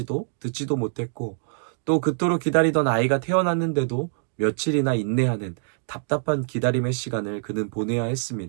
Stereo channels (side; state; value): left; silent; digital silence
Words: 듣지도 못했고, 또 그토록 기다리던 아이가 태어났는데도 며칠이나 인내하는 답답한 기다림의 시간을 그는 보내야